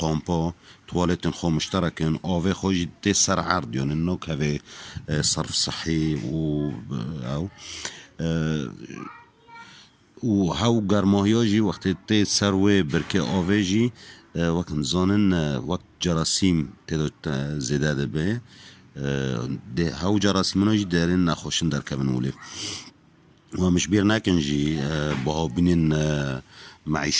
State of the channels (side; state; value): both; identical; correlation 1.00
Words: توالتن خو مشترکن آوه خوش تی سر عرض یعنی نو کوی صرف صحی و هاو گرماهی جی وقتی تی سروی برکه آوه جی وقت زانن وقت جراسیم تی زیده ده به هاو جراسیمونا جی دارین نخوشن در کبن اولی و مشبیر نکن جی باها بینین